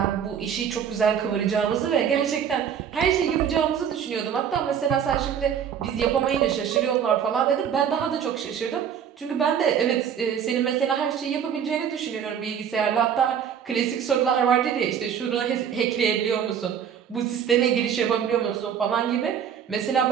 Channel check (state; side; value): quieter; left; 8.2 dB